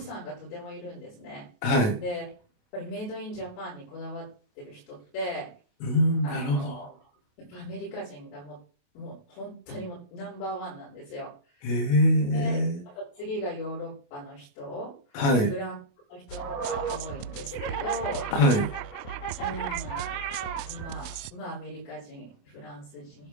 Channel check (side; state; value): right; late; 28 ms